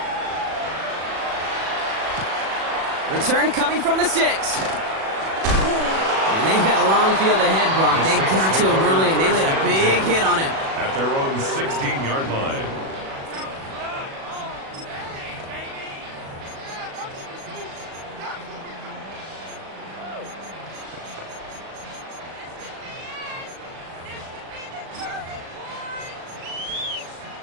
Return coming from the 6. And they've got a long field ahead, Brock. They got to him early, and they laid a big hit on him. At their own 16-yard line.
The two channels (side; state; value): left; late; 37 ms